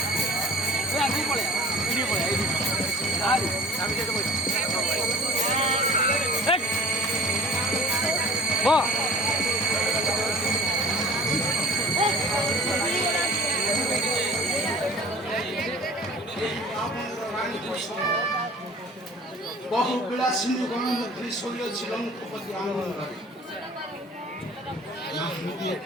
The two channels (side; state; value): both; normal; correlation 0.49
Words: বহু বিলাসিনী গণমন্ত্রী শৈলছিল মুখপতি আনন্দরে